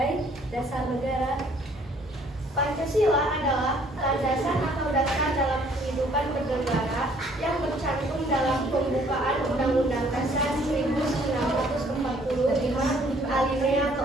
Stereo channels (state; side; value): normal; both; correlation 0.61